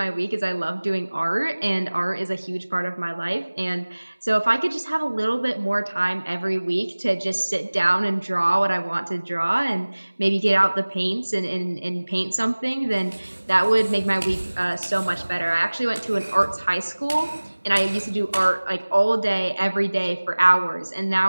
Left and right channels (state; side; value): inverted; both; correlation -1.00